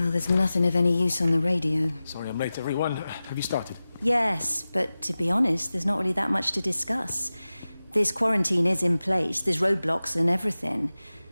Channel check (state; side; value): inverted; both; correlation -0.96